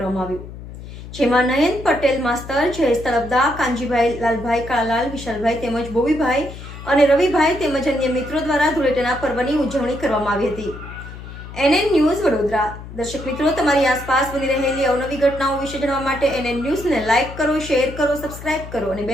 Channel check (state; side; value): noise; left; hum, 13 dB below the sound